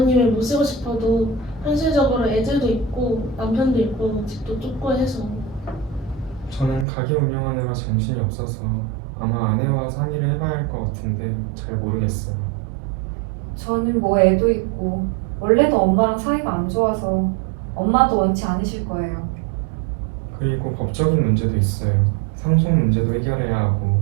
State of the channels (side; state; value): left; drops out; at 6.9 s